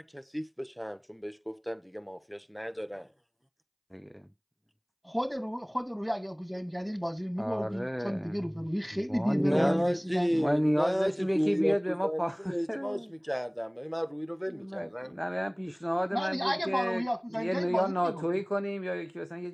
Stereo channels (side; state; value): both; identical; correlation 1.00